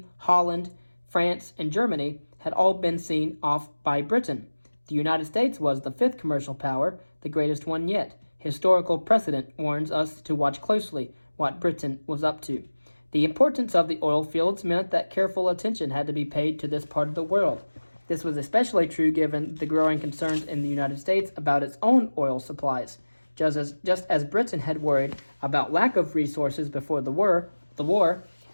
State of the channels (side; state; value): both; inverted; correlation -1.00